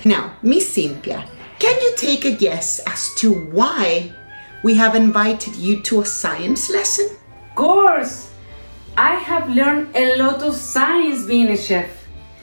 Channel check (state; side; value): inverted; both; correlation -1.00